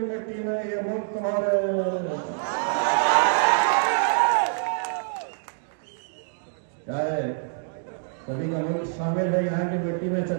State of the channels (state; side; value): silent; left; digital silence